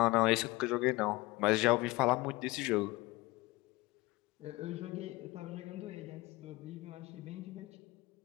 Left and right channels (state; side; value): quieter; right; 21.5 dB